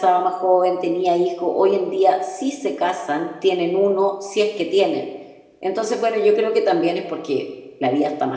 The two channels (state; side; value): identical; both; correlation 1.00